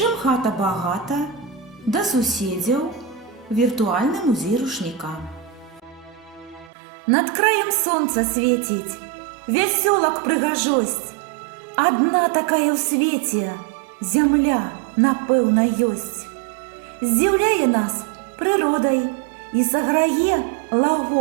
хата багата», «Да суседзяў», «Віртуальны музей рушніка». Над краем сонца свеціць, вясёлак прыгажосць. Адна такая ў свеце, зямля, напэўна, ёсць. Здзіўляе нас прыродай і саграе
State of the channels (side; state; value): left; drops out; at 6.7 s